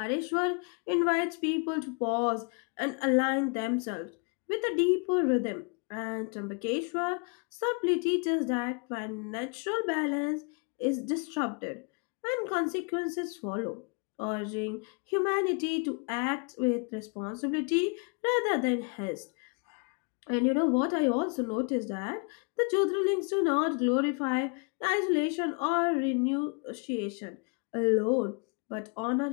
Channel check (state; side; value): quieter; right; 36.6 dB